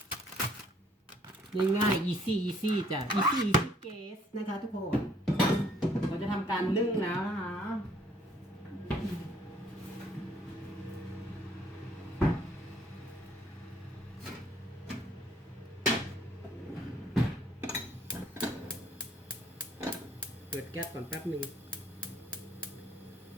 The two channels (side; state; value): both; normal; correlation 0.63